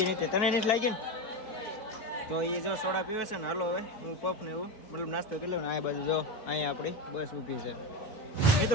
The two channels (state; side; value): late; right; 4.5 ms